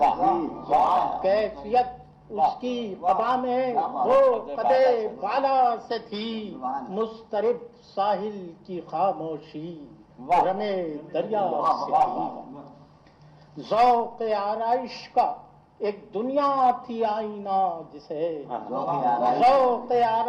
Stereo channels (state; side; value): identical; both; correlation 1.00